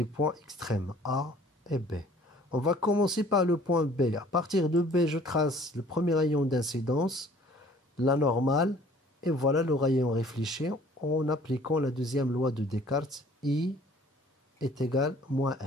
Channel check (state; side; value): normal; both; correlation 0.54